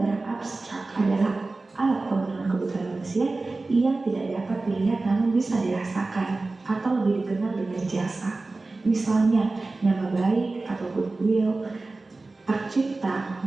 abstrak adalah alat pemenuhan kebutuhan manusia yang tidak dapat dilihat namun bisa dirasakan atau lebih dikenal dengan jasa. Misalnya nama baik atau goodwill, hak cipta,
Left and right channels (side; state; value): left; quieter; 3.4 dB